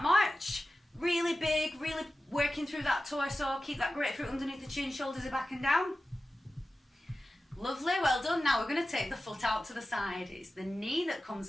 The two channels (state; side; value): normal; both; correlation 0.94